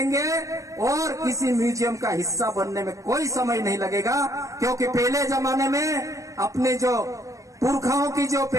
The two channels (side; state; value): left; late; 0.16 ms